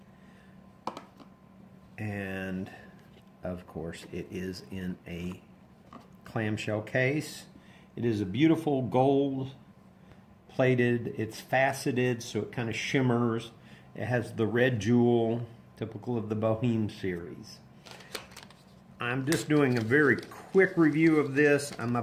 And, of course, it is in a clamshell case. It is a beautiful gold plated. It's faceted, so it kind of shimmers. It has the red jewel, typical of the Boheme series. I'm just doing a very quick review of this. I'm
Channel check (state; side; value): identical; both; correlation 1.00